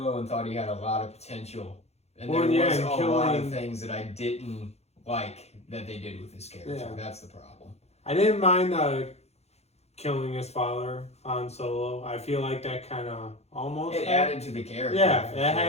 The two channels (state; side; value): late; right; 0.31 ms